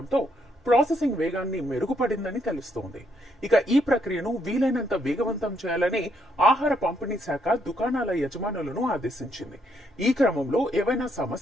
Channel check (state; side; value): normal; both; correlation 0.73